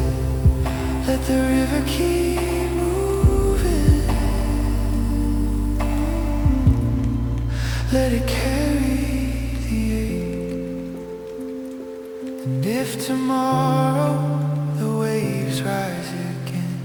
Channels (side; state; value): both; identical; correlation 1.00